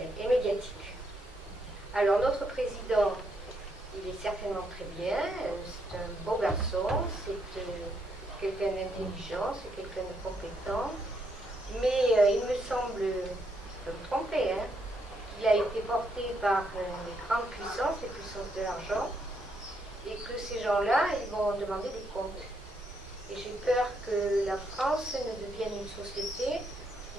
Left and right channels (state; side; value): normal; both; correlation 0.76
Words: médiatique. Alors notre président, il est certainement très bien, c'est un beau garçon, c'est quelqu'un d'intelligent, c'est quelqu'un de compétent, mais il me semble, je peux me tromper, qu'il a été porté par les grandes puissances, les puissances de l'argent, et que ces gens-là, ils vont demander des comptes. Et j'ai peur que la France ne devienne une société